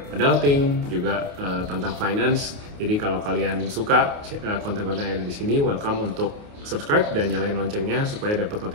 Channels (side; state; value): left; late; 28 ms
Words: adulting, juga tentang finance. Jadi kalau kalian suka konten-konten yang ada di sini, welcome untuk subscribe dan nyalain loncengnya supaya dapat